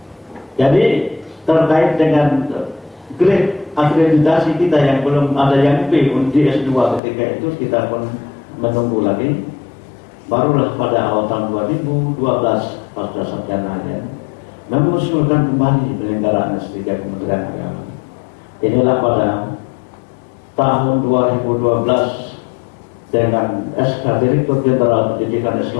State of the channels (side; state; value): right; drops out; at 7.0 s